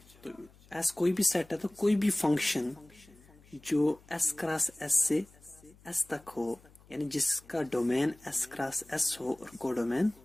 तो एस कोई भी सेट है तो कोई भी फंक्शन जो एस क्रॉस एस से एस तक हो, यानी जिसका डोमेन एस क्रॉस एस हो और कोडोमेन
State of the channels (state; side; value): noise; left; hum, 26 dB below the sound